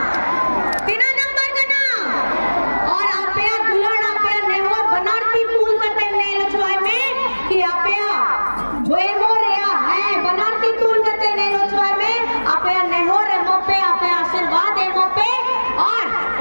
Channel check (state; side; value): inverted; both; correlation -1.00